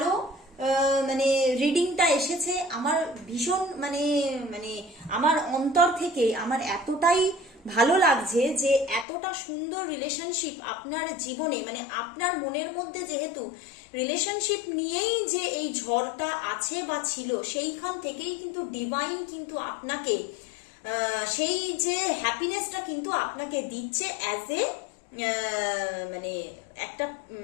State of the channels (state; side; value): drops out; right; at 9.1 s